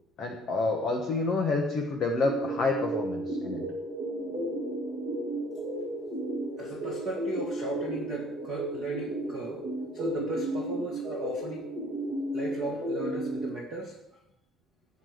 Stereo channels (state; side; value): normal; both; correlation 0.55